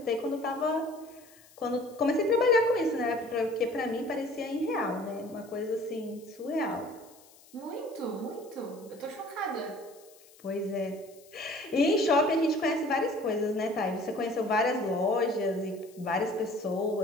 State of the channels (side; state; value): left; noise; hiss, 25 dB below the sound